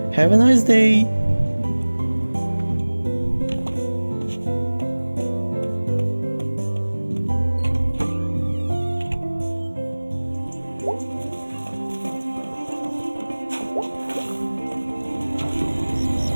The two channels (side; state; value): both; inverted; correlation -1.00